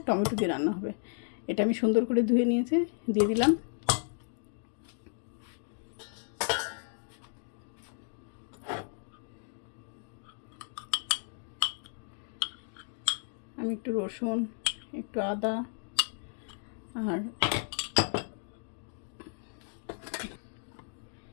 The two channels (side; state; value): right; silent; digital silence